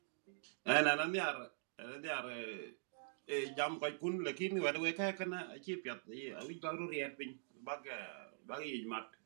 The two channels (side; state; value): left; silent; digital silence